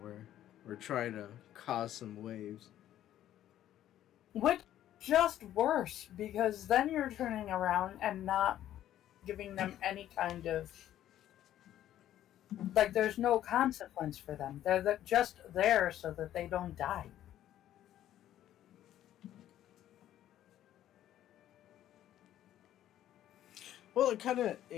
we're trying to cause some waves. Which just worse, because then you're turning around and not giving them any kind of, like, there's no consequence for them. They're just there so that they don't die. Well, it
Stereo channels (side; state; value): right; quieter; 12.2 dB